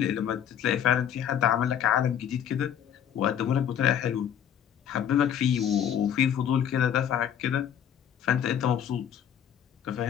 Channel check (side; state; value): right; quieter; 9.3 dB